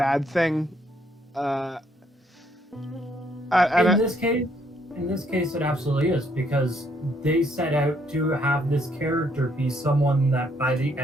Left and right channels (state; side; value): normal; both; correlation 0.69